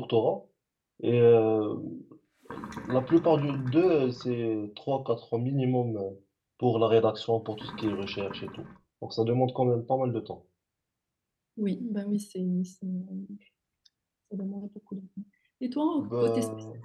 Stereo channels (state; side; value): identical; both; correlation 1.00